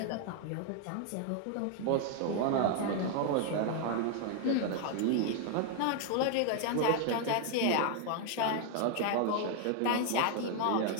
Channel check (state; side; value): different; both; correlation 0.00